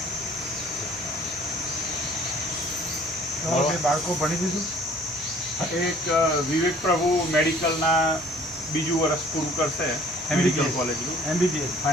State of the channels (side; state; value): left; noise; hum, 26 dB below the sound